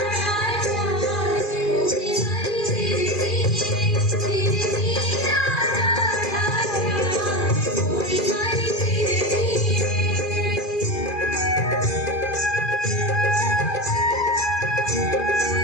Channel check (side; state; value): right; late; 2.4 ms